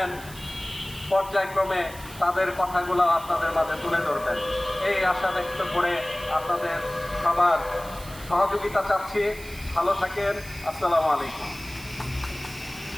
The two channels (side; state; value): right; noise; hiss, 17 dB below the sound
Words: পর্যায়ক্রমে তাদের কথাগুলো আপনাদের মাঝে তুলে ধরবেন এই আশা ব্যক্ত করে আপনাদের সবার সহযোগিতা চাচ্ছি। ভালো থাকেন। আসসালামু আলাইকুম।